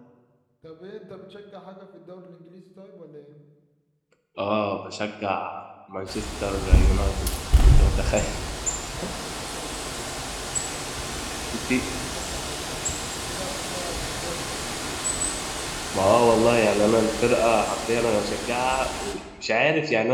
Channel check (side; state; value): both; identical; correlation 1.00